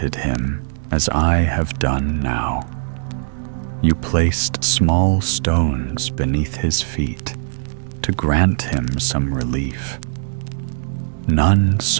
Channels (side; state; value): left; silent; digital silence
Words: him as I have done now. You placed small stones beneath his feet to grant him some relief. None